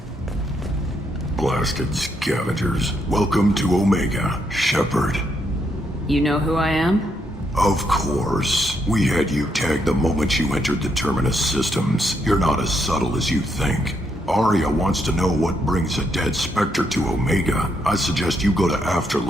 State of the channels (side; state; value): both; normal; correlation 0.77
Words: Blasted scavengers. Welcome to Omega, Shepard. You know who I am? Of course. We had you tagged the moment you entered the Terminus systems. You're not as subtle as you think. Arya wants to know what brings a dead Spectre to Omega. I suggest you go to